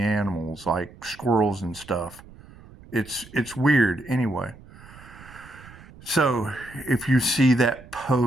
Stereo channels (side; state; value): right; noise; rumble, 20 dB below the sound